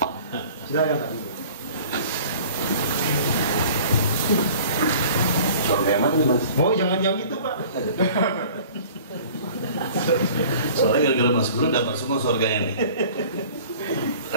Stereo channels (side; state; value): both; inverted; correlation -0.46